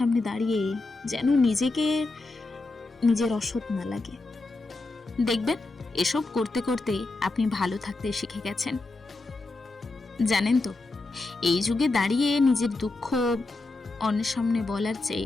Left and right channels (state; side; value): quieter; right; 3.3 dB